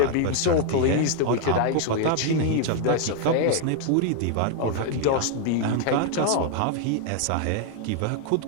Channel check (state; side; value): different; both; correlation 0.00